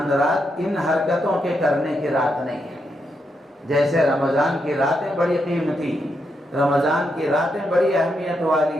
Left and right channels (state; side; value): normal; both; correlation 0.82